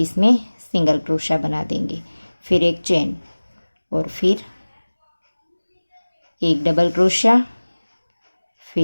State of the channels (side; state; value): both; inverted; correlation -1.00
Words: इसमें सिंगल क्रोशिया बना देंगे, फिर एक चेन और फिर एक डबल क्रोशिया,